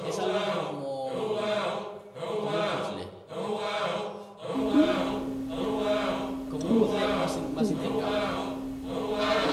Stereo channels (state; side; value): identical; both; correlation 1.00